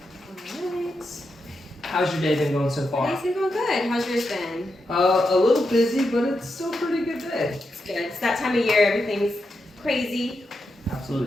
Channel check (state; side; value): normal; both; correlation 0.86